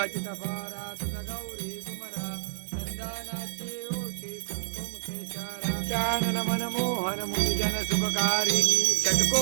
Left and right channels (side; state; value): left; silent; digital silence